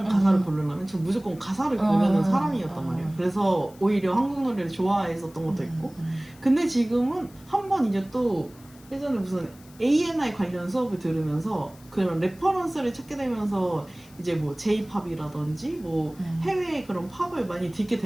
가사를 고르려면 전 무조건 가사를 고르는 사람이었단 말이에요. 그래서 오히려 한국 노래를 좋아했었던 것도 있고 근데 지금은 한 번 이제 또 예전에 무슨 A&I 관련 수업을 들으면서 그런 레퍼런스를 찾게 되면서 이제 뭐 J-팝이라든지 뭐 해외의 그런 팝을 많이 듣게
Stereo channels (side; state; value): left; noise; hiss, 25 dB below the sound